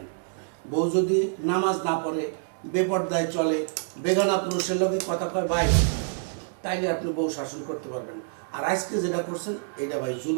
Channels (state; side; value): silent; left; digital silence